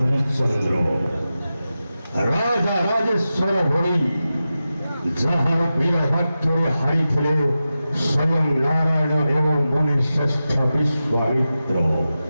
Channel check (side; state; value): both; inverted; correlation -0.92